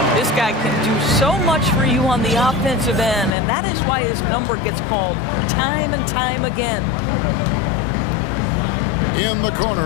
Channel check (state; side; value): drops out; right; at 3.4 s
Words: This guy can do so much for you on the offensive end, and that is why his number gets called time and time again. In the